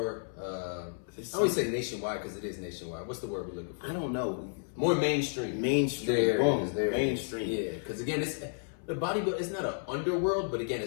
I always say nationwide because it is nationwide. What's the word we're looking for? I don't know. More mainstream. Mainstream. Boom. Mainstream. Yeah, because again, the bodybuilding, it's not an underworld, but again,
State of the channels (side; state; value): right; silent; 56 dB below the other